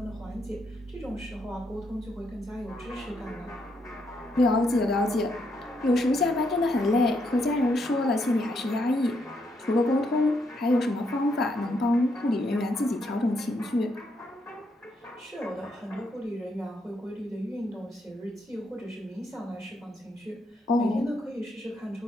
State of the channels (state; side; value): normal; both; correlation 0.77